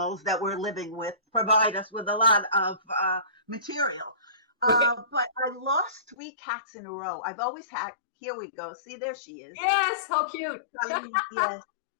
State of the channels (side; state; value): right; drops out; at 6.2 s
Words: that we're living with provide us with a lot of material. But I lost 3 cats in a row. I've always had, here we go. See, there she is. Yes, how cute. Yes.